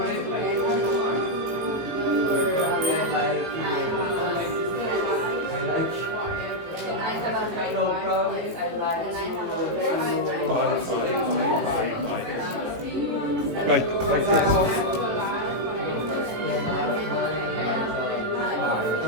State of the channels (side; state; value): left; late; 18 ms